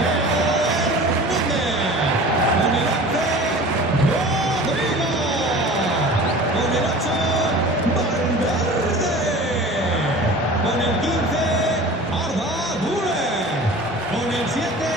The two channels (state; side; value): normal; both; correlation 0.40